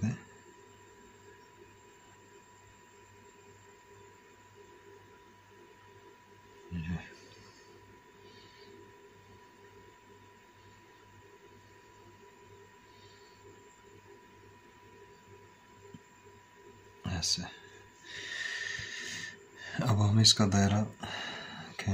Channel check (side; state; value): both; identical; correlation 1.00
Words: ये ऐसे। अब हम इसका दायरा